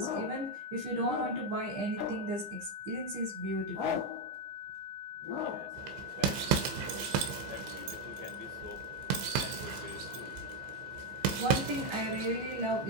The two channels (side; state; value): left; late; 15 ms